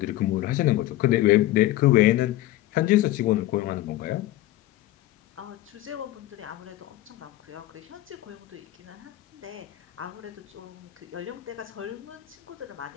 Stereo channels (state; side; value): quieter; right; 15.6 dB